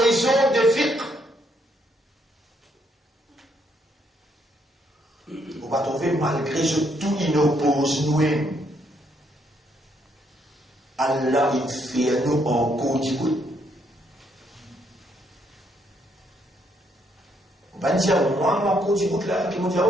de fiqh. On va trouver malgré ce tout inoppose nous-mêmes. Allah il fait nous en code. On va dire, moi, mon code là, qui me dit,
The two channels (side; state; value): both; normal; correlation 0.73